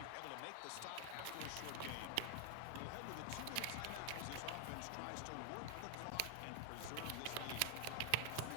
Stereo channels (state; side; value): different; both; correlation 0.00